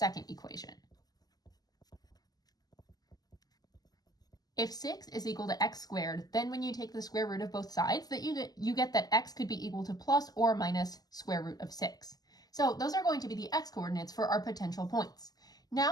equation. If 6 is equal to x squared, then when you take the square root of both sides, that you get that x could be equal to plus or minus square root of 6. So those are going to be the x coordinates for our potential points.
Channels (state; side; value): late; right; 0.19 ms